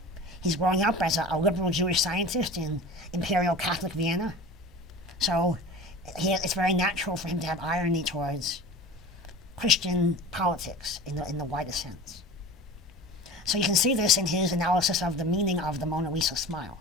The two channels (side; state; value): both; normal; correlation 0.37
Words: He's growing up as a liberal Jewish scientist in Imperial Catholic Vienna. So it's very natural for him to have irony towards Christian politics in the widest sense. So you can see this in his analysis of the meaning of the Mona Lisa smile.